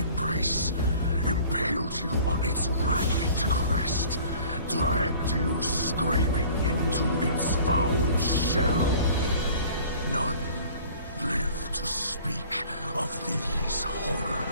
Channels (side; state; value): both; inverted; correlation -0.48